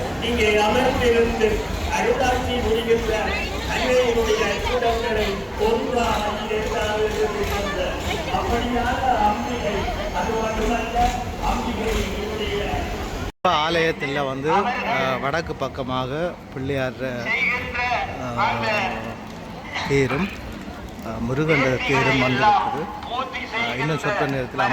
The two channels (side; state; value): both; identical; correlation 1.00